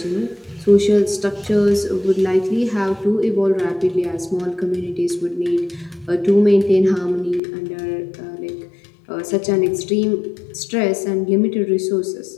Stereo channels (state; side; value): drops out; right; at 7.4 s